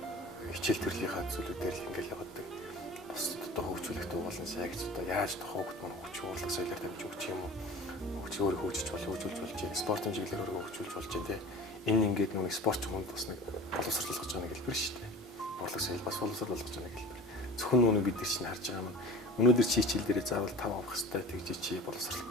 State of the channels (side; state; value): both; normal; correlation 0.38